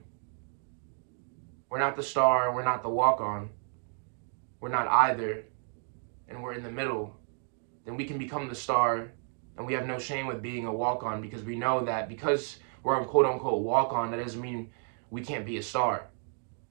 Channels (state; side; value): silent; left; 57 dB below the other